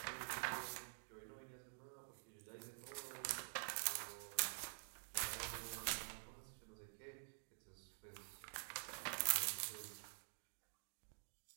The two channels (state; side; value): silent; left; digital silence